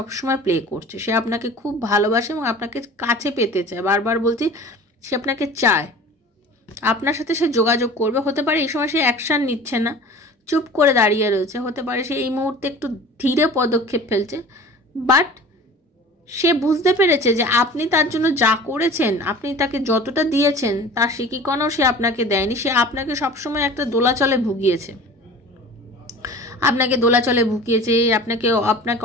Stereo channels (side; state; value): both; normal; correlation 0.41